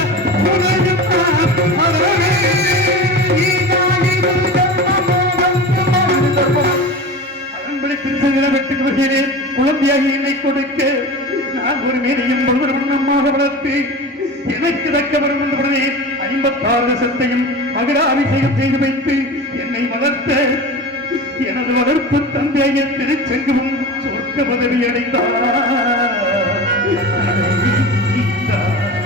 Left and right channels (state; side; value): normal; both; correlation 0.31